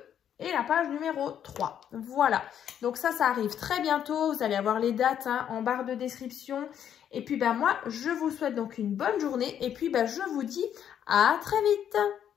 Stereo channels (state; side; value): quieter; right; 9.4 dB